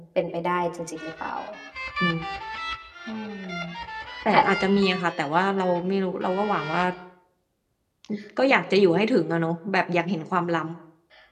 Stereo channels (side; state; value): both; identical; correlation 1.00